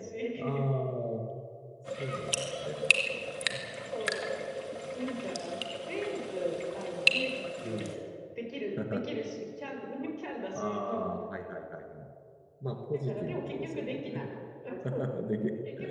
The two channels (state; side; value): identical; both; correlation 1.00